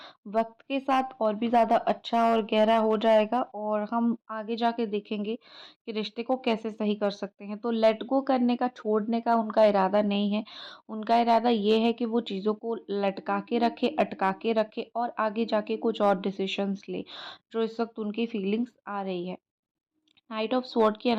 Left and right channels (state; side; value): identical; both; correlation 1.00